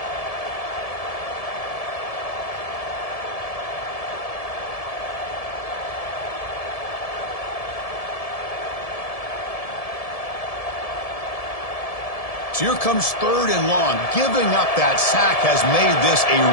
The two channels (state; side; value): late; right; 1.7 ms